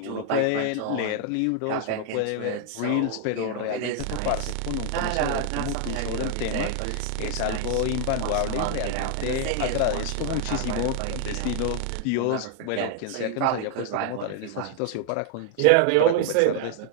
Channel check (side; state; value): both; different; correlation 0.00